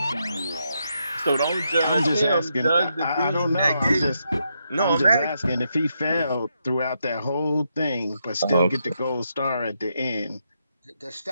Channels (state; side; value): inverted; both; correlation -0.81